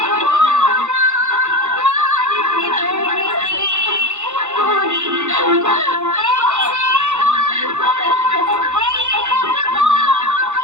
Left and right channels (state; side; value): late; left; 0.83 ms